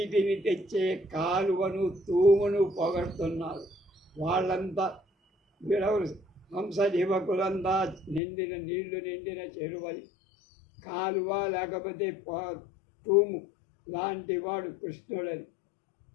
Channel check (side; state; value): right; drops out; at 8.2 s